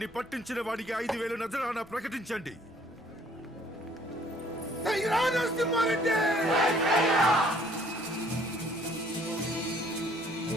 పట్టించిన వాడికి 5,000 నజరానా ప్రకటించండి.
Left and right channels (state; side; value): noise; right; rumble, 27 dB below the sound